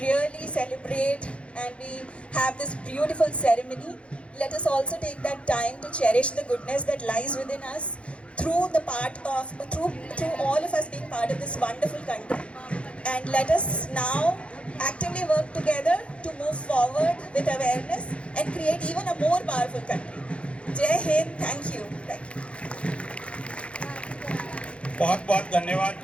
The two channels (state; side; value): late; right; 0.060 ms